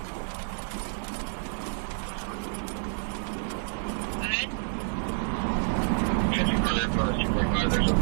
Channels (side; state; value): left; silent; 59 dB below the other